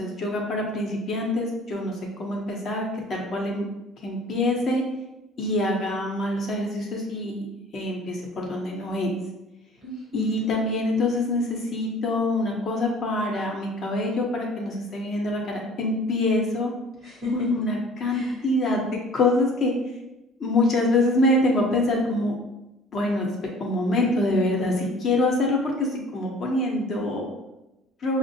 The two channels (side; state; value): both; normal; correlation 0.49